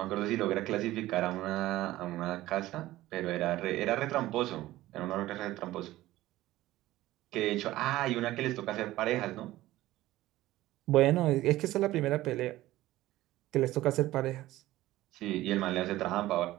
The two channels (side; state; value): left; quieter; 16.2 dB